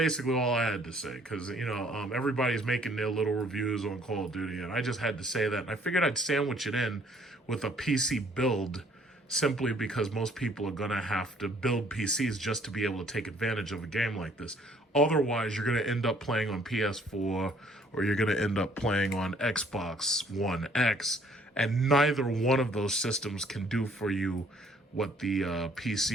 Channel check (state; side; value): normal; both; correlation 0.61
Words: all I had to say, because, everybody's making their little reviews on Call of Duty, and I just had to say that. And I figured I'd sandwich it in with a PC build, simply because most people are going to have to build PCs just to be able to take advantage of a game like this. Otherwise, you're going to end up playing on PS4 or you're going to end up playing on Xbox One X, and neither one of those systems can do for you what the